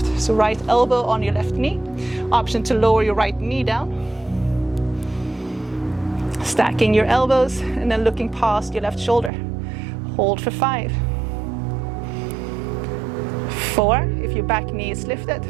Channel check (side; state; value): left; drops out; at 9.3 s